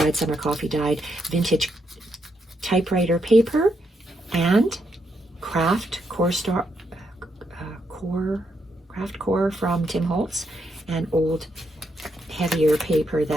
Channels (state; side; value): normal; both; correlation 0.79